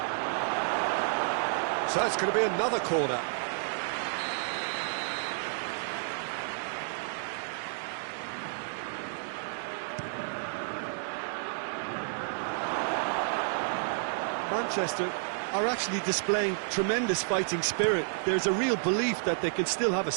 So it's going to be another corner. Manchester are actually displaying tremendous fighting spirit. There's a real belief that they can still have a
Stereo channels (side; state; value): left; silent; digital silence